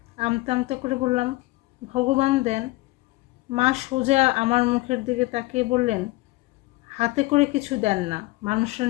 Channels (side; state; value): right; quieter; 20.7 dB